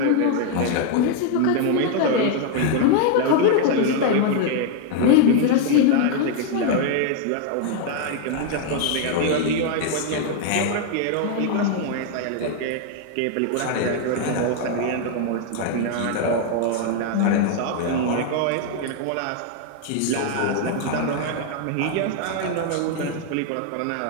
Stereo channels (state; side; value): different; both; correlation 0.00